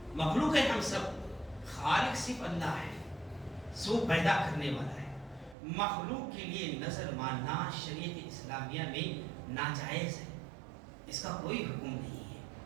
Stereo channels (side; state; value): left; drops out; at 5.6 s